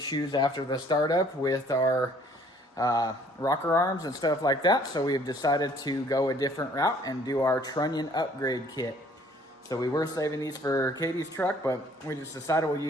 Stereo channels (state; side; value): normal; both; correlation 0.58